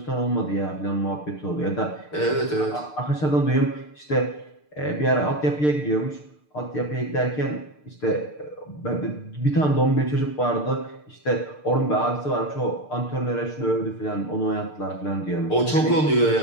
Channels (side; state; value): right; late; 6.7 ms